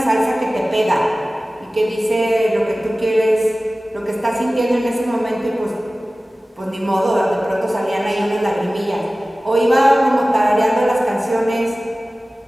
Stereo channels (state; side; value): normal; both; correlation 0.97